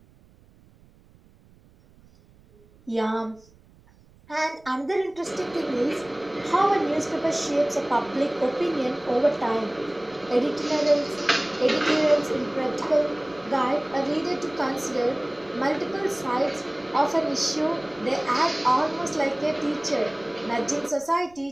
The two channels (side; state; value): right; noise; rumble, 28 dB below the sound